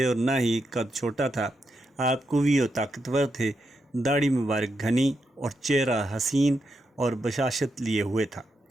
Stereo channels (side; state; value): both; normal; correlation 0.83